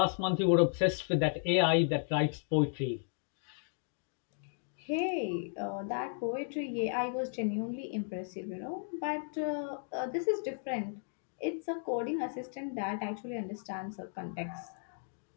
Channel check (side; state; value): right; silent; digital silence